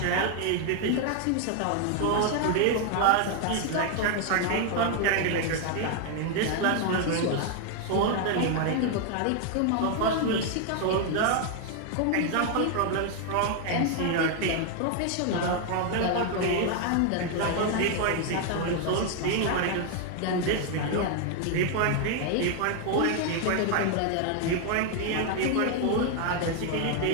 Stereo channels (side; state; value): both; different; correlation 0.00